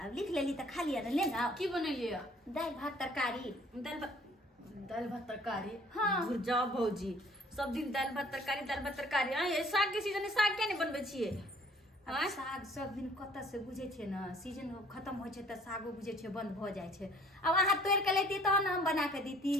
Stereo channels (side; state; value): both; normal; correlation 0.56